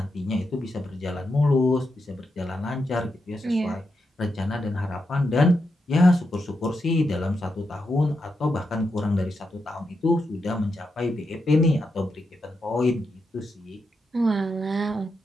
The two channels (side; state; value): both; normal; correlation 0.85